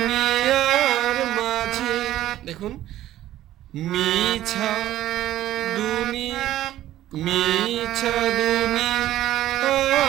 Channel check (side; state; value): left; quieter; 13.6 dB